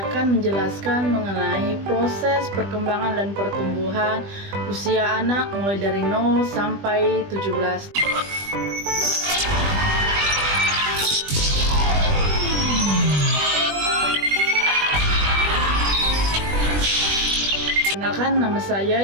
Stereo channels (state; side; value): late; left; 20 ms